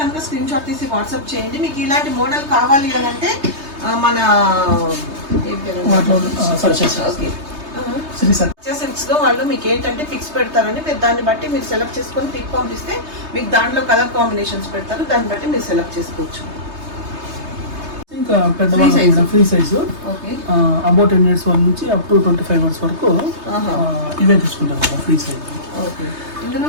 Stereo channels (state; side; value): late; left; 3.3 ms